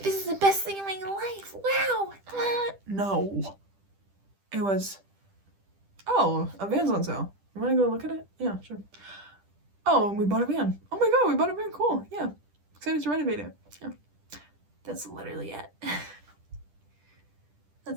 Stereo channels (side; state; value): left; late; 10 ms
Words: this is the best thing in my life. Wow. No. It was, oh, a van's on sale. You want to go look at it? Yeah, sure. Oh, and we bought a van. Oh my god, we bought a van. Cool. Yeah. Excited to renovate it. Yeah. That's literally it.